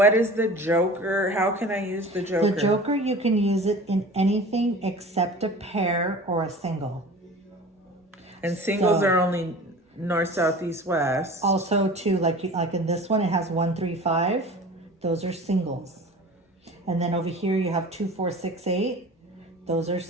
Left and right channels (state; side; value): normal; both; correlation 0.39